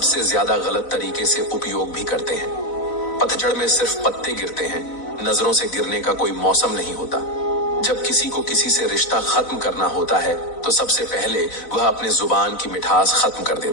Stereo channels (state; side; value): late; right; 4.1 ms